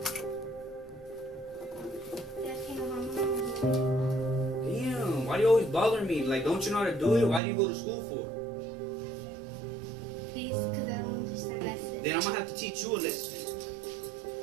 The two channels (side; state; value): left; drops out; at 7.4 s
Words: Dad, can you help me on my wood? Damn, why do you always bother me? Like, don't you know how to do it? Why do you go to school for? Please, because I don't understand lessons. Then I'm gonna have to teach you a lesson.